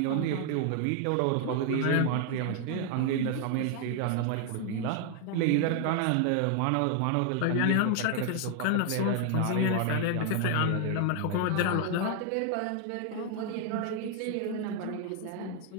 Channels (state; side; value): different; both; correlation 0.00